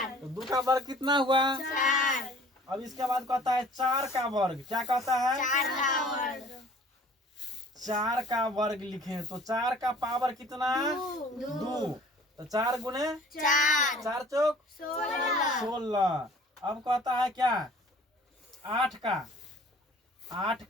तो 2 का वर्ग कितना हुआ? 4। अब इसके बाद कहता है 4 का वर्ग। क्या कहता है? 4 का वर्ग। 4 का वर्ग लिखें तो 4 का पावर कितना? 2। तो 4 गुने 4। 4 चौक 16। अब कहता है क्या? 8 का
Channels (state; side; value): normal; both; correlation 0.50